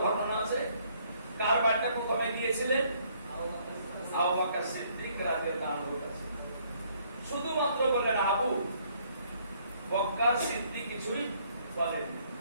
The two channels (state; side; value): inverted; both; correlation -0.65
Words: ঘটনা আছে। কার বাড়িতে প্রথমে গিয়েছিলেন? আবু বকর সিদ্দিক রাদিয়াল্লাহু আনহুর কাছে। শুধুমাত্র বললেন আবু বকর সিদ্দিক কিছুই বলেন,